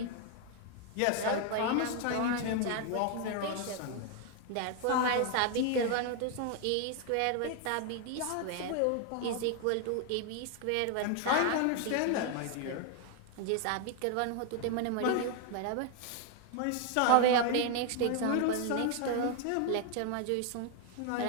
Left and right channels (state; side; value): different; both; correlation 0.00